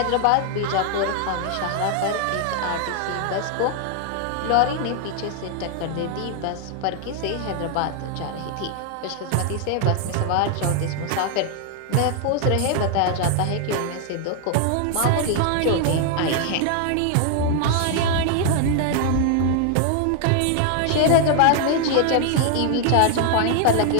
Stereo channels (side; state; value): both; different; correlation 0.00